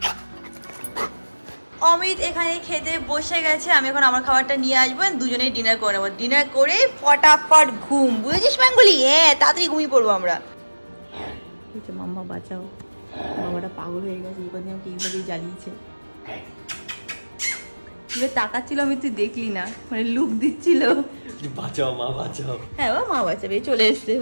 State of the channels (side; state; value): both; inverted; correlation -1.00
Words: এখানে খেতে বসে গেছে, আমি এখন আমার খাবারটা নিয়ে আসবো, দুজনেই ডিনার করে নেবো। ডিনার করে ফটাফট ঘুম, বুঝেছিস ম্যাঙ্গুলি? হ্যাঁ, তাড়াতাড়ি ঘুমিয়ে পড়বো আমরা। মাম্মা বাঁচাও, বাবাটা পাগল হয়ে গেছে, এবার আমাকে এইভাবেই জ্বালিয়েছে। তাকাচ্ছিল, আমি তুই দেখলি না, মানে লুক দিচ্ছিল, বাঁচাও মা বাঁচাও। হ্যাঁ মা বাঁচাবে, চলে এসছে,